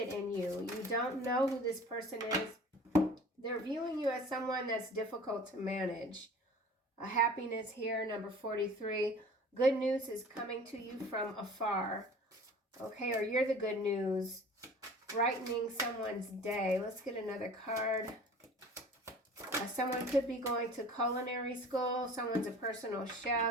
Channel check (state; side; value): normal; both; correlation 0.44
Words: in you. You don't know who this person is. They're viewing you as someone that's difficult to manage. A happiness here, number 43. Good news is coming to you from afar. Okay, or you're the good news. Brightening someone's day. Let's get another card. Someone could be going to culinary school. Someone's a personal